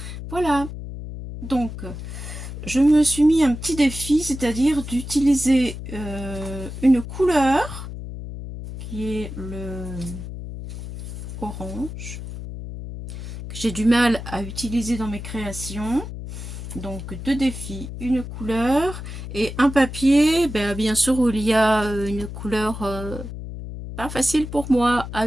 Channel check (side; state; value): left; noise; hum, 9 dB below the sound